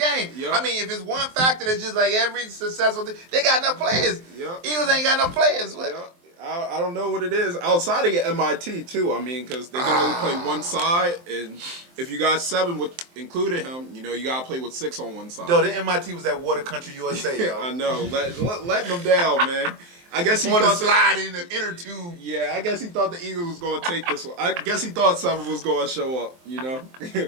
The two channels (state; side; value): late; left; 23 ms